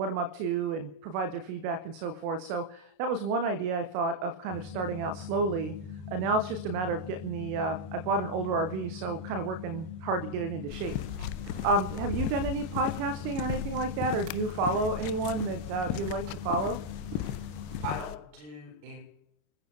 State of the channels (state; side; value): late; left; 33 ms